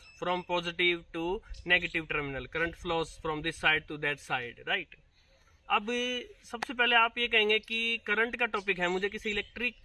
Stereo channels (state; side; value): identical; both; correlation 1.00